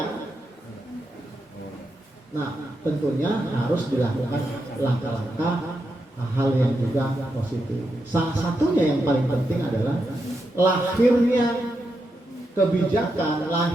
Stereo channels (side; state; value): both; normal; correlation 0.85